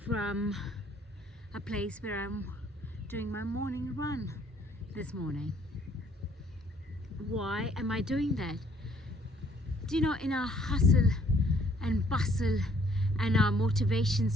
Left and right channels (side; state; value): both; normal; correlation 0.63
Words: from a place where I'm doing my morning run this morning. Why am I doing that? Do you know, in our hustle and bustle and our